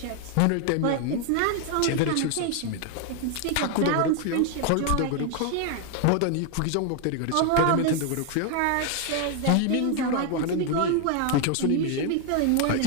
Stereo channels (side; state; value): both; different; correlation 0.00